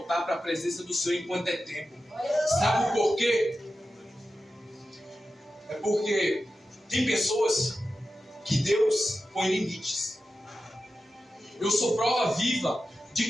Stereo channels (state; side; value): normal; both; correlation 0.92